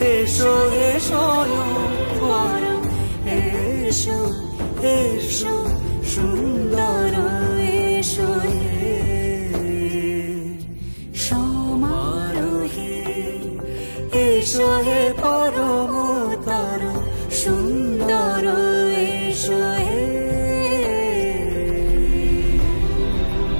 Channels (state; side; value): inverted; both; correlation -1.00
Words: এসো হে স্বয়ং পরম এসো এসো সুন্দর এসো হে সমারোহে এসো হে পরম তর সুন্দর এসো হে